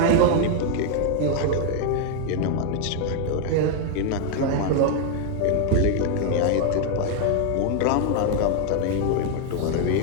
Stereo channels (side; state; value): both; different; correlation 0.00